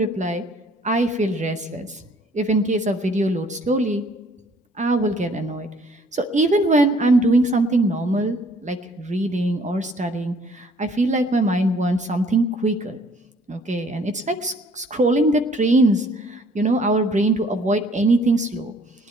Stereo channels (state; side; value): normal; both; correlation 0.59